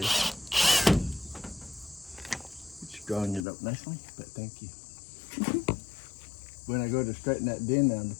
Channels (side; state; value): right; drops out; at 3.5 s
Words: It's drawing it up nicely, but thank you. When I go to straighten that den down,